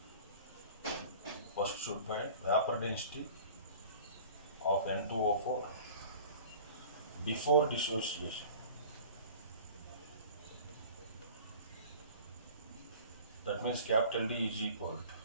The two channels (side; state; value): both; inverted; correlation -0.44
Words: First should find vapor density of N2O4 before dissociation. That means capital D is equal